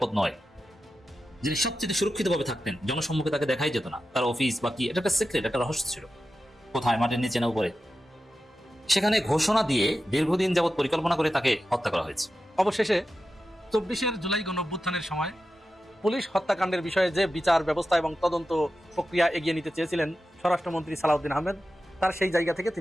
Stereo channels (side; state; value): both; normal; correlation 0.92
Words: নয়, যিনি সবচেয়ে সুরক্ষিতভাবে থাকতেন, জনসম্মুখে তাকে দেখাই যেত না, তার অফিস বা কি, এটা একটা সিক্রেট, একটা রহস্য ছিল, কোথায়, মাটির নিচে না উপরে, সেখানে ঘোষণা দিয়ে দীর্ঘদিন যাবৎ পরিকল্পনা করে তাকে হত্যা করা হয়েছে। অবশেষে 24 জুলাই গণঅভ্যুত্থানের সময় পুলিশ হত্যাকাণ্ডের বিষয়ে যে বিচার ব্যবস্থা এবং তদন্ত প্রক্রিয়া এগিয়ে নিতে চেয়েছিলেন স্বরাষ্ট্রমন্ত্রী সালাউদ্দিন আহমেদ, তার সেই জায়গা থেকে